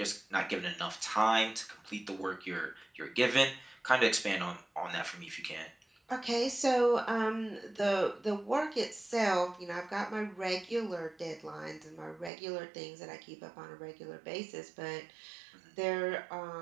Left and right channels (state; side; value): drops out; left; at 12.3 s